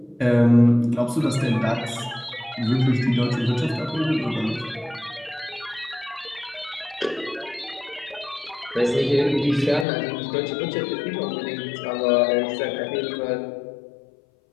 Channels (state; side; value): drops out; right; at 9.9 s